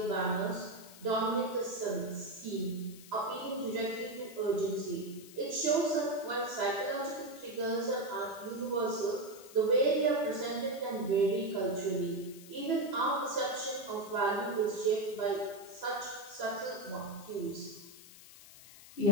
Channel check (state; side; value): noise; left; hiss, 18 dB below the sound